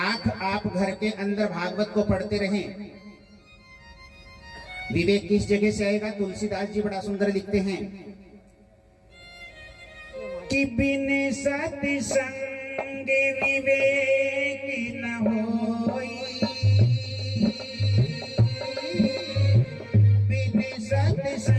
आप घर के अंदर भागवत को पढ़ते रहें, विवेक किस जगह से आएगा? तुलसीदास जी बड़ा सुंदर लिखते हैं कि बिन सत्संग विवेक न होई, बिन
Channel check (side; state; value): both; identical; correlation 1.00